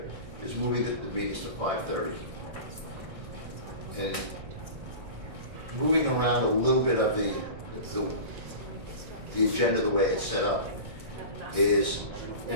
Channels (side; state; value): left; late; 1.6 ms